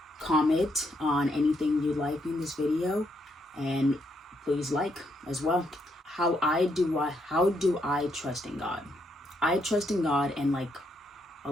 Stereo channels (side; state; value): both; normal; correlation 0.76